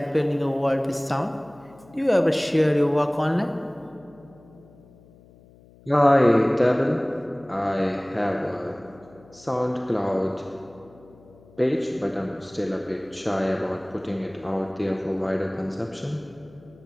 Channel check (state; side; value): noise; left; hum, 25 dB below the sound